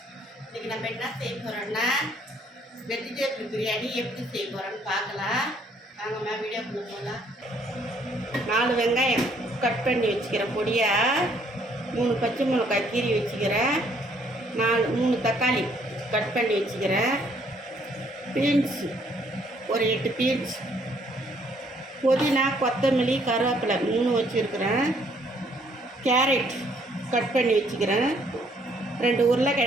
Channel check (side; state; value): both; normal; correlation 0.65